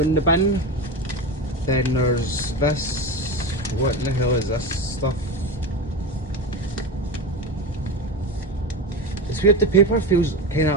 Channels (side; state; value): both; normal; correlation 0.22